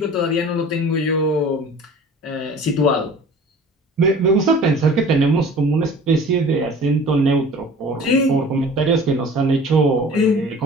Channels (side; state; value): both; normal; correlation 0.44